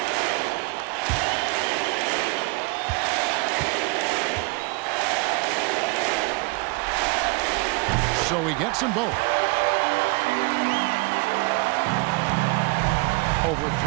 So he gets them both. Over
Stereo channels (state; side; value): quieter; left; 26.8 dB